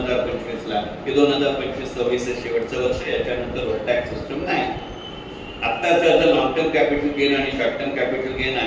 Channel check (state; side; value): identical; both; correlation 1.00